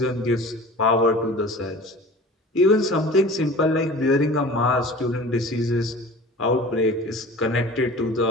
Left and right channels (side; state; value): both; normal; correlation 0.40